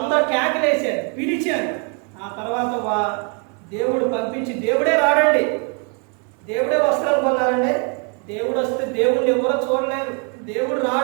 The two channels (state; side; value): quieter; left; 37.7 dB